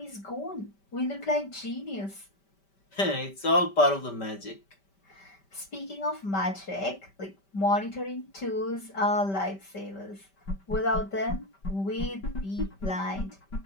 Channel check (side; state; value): right; late; 5.1 ms